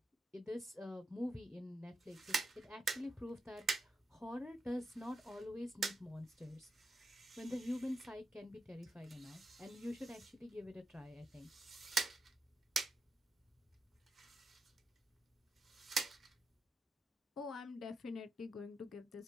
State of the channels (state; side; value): normal; both; correlation 0.86